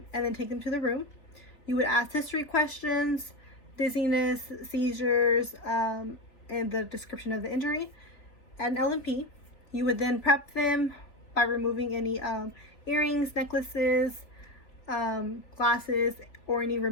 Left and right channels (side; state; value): right; late; 3.5 ms